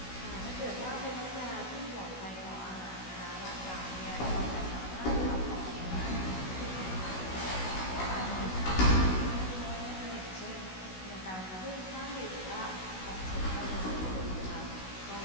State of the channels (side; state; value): right; late; 16 ms